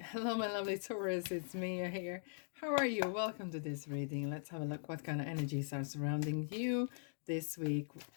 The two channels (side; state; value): right; silent; digital silence